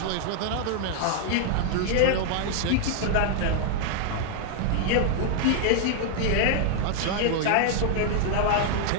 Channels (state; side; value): different; both; correlation 0.00